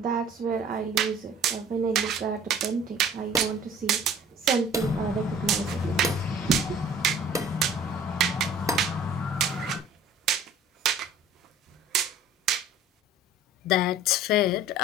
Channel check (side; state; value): both; normal; correlation 0.49